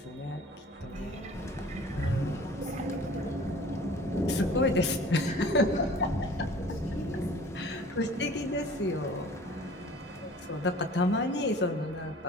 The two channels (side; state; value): both; normal; correlation 0.47